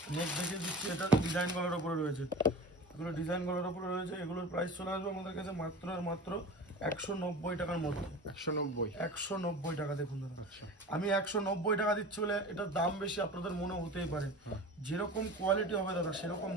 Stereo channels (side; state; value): both; normal; correlation 0.35